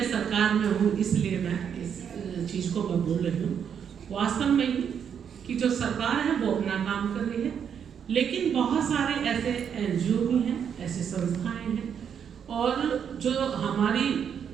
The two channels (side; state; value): left; quieter; 7.9 dB